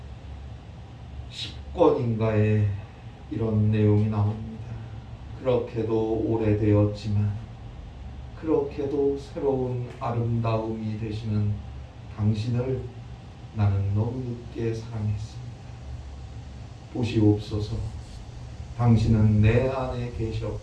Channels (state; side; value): identical; both; correlation 1.00